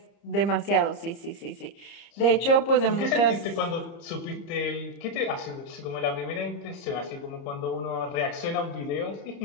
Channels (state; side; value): late; right; 30 ms